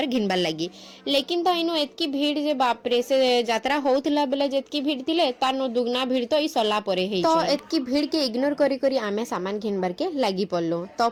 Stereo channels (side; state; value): both; identical; correlation 1.00